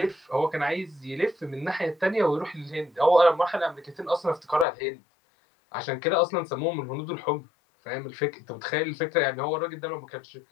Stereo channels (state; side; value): drops out; right; at 4.7 s